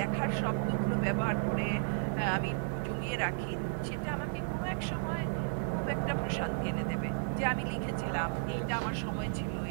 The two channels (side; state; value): left; silent; digital silence